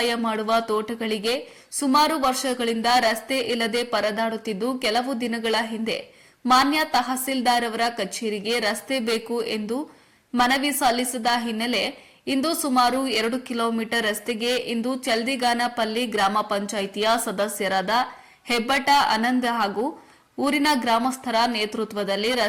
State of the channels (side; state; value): both; identical; correlation 1.00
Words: ಮಾಡುವ ತೋಟಗಳಿಗೆ ಸುಮಾರು ವರ್ಷಗಳಿಂದ ರಸ್ತೆ ಇಲ್ಲದೆ ಪರದಾಡುತ್ತಿದ್ದು, ಕೆಲವು ದಿನಗಳ ಹಿಂದೆ ಮಾನ್ಯ ತಹಸೀಲ್ದಾರ್ ಅವರ ಕಚೇರಿಗೆ ರಸ್ತೆ ಬೇಕು ಎಂದು ಮನವಿ ಸಲ್ಲಿಸಿದ ಹಿನ್ನೆಲೆ ಇಂದು ಸುಮಾರು 2 ಕಿಲೋಮೀಟರ್ ರಸ್ತೆಗೆ ಇಂದು ಚಲ್ದಿಗಾನಪಲ್ಲಿ ಗ್ರಾಮ ಪಂಚಾಯಿತಿಯ ಸದಸ್ಯರಾದ ಹೆಬ್ಬಟ ಆನಂದ್ ಹಾಗೂ ಊರಿನ ಗ್ರಾಮಸ್ಥರ ನೇತೃತ್ವದಲ್ಲಿ